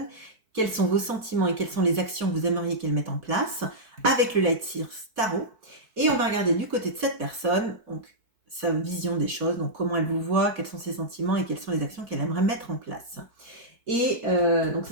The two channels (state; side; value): late; left; 4.6 ms